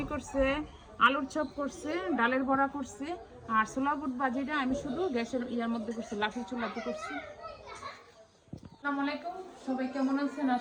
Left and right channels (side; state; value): both; identical; correlation 1.00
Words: করছে, আলুর চপ করছে, ডালের বড়া করছে। আর ছোলা বুট ভাজিটা আমি শুধু গ্যাসের ইয়ার মধ্যে করছি, লাঠির চুলাতে করছি। আসসালামু আলাইকুম, সবাই কেমন আছেন?